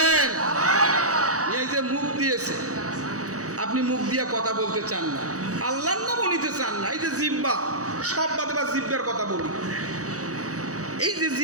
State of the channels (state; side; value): late; left; 0.66 ms